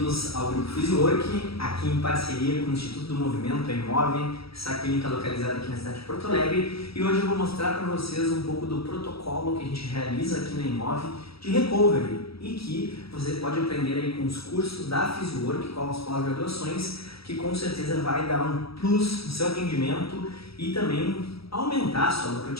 ao Grupo Physiwork, aqui em parceria com o Instituto do Movimento, a Imove, essa clínica localizada aqui na cidade de Porto Alegre. E hoje eu vou mostrar para vocês um pouco do protocolo que a gente realiza aqui na Imove de recovery e que você pode aprender aí com os cursos da Physiwork, com as pós-graduações, que com certeza vai dar um plus no seu atendimento e também aumentar a sua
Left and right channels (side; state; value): right; late; 0.76 ms